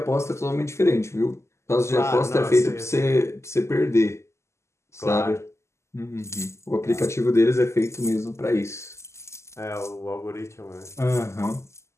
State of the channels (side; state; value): right; late; 0.13 ms